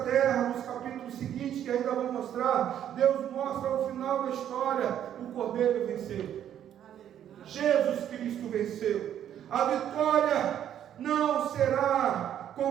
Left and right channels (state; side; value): quieter; left; 10.3 dB